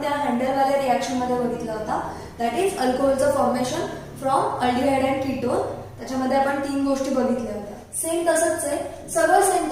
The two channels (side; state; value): both; identical; correlation 1.00